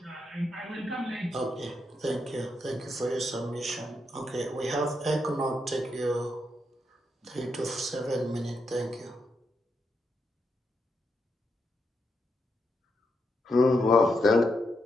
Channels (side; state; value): both; normal; correlation 0.82